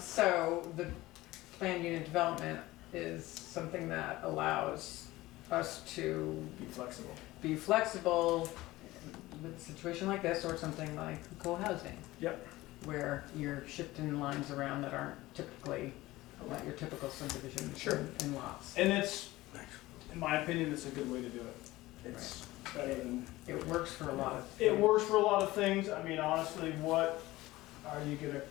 the planned unit development is something that allows us to Be flexible. be flexible with a situation like this or something like co-housing. Yep. Where you're shifting lines around that aren't typically, not your typical subdivision Sure. in lots. And it's, in my opinion, it's a good way to do it. It's better than, It works for a lot of. it works for a lot of things. I mean, honestly, what are you gonna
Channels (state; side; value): quieter; right; 18.3 dB